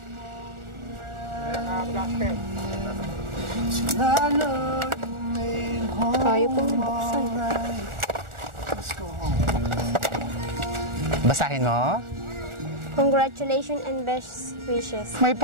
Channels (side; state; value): left; late; 1.4 ms